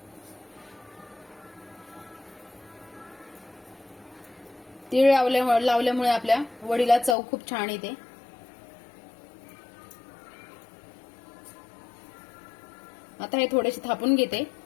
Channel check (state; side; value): drops out; right; at 7.2 s